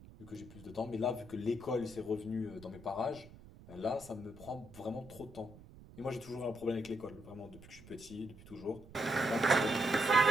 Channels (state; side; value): noise; right; rumble, 19 dB below the sound